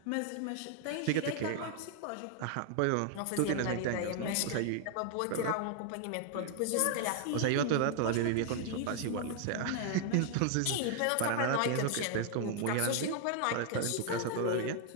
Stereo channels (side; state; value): both; different; correlation 0.00